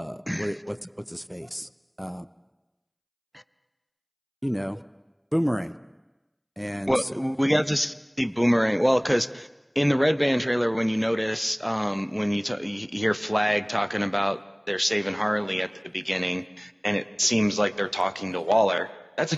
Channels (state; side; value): identical; both; correlation 1.00